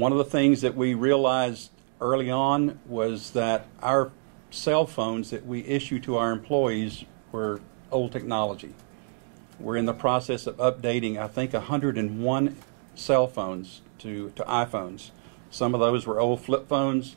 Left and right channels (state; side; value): silent; left; 56 dB below the other